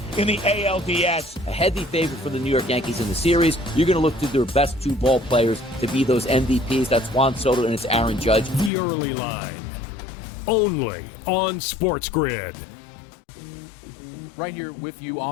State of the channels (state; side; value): drops out; right; at 8.7 s